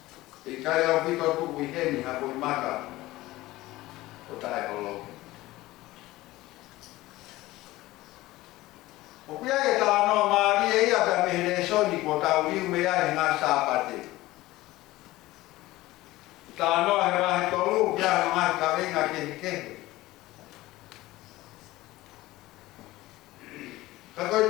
E kai au pito tuku i heni hako i maka o tae holo. O kia e tā noa maari e ia ka mehere soni ko tau riu me ai ngā sāpate. Tā noa he mahi tolu kia he mahi ka venga kehi kehi. Ka koi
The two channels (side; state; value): right; quieter; 17.9 dB